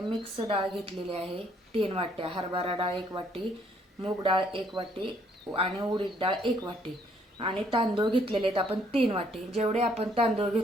मिक्स डाळ घेतलेली आहे 3 वाट्या, हरभरा डाळ 1 वाटी, मूग डाळ 1 वाटी आणि उडीद डाळ 1 वाटी आणि तांदूळ घेतलेले आहेत आपण 3 वाटी। जेवढे आपण तांदूळ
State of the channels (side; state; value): both; normal; correlation 0.66